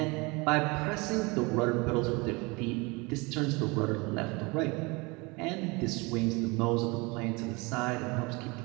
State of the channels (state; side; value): quieter; left; 26.6 dB